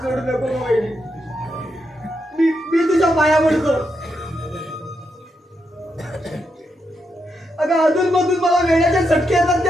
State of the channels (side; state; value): both; normal; correlation 0.83